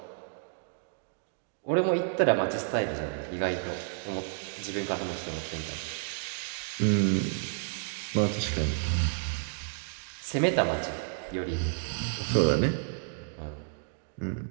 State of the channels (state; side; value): silent; left; digital silence